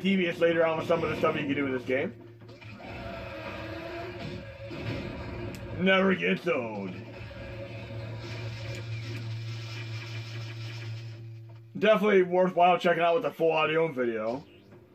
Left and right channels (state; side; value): identical; both; correlation 1.00